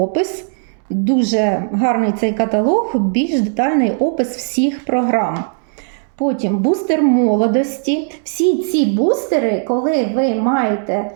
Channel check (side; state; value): left; silent; digital silence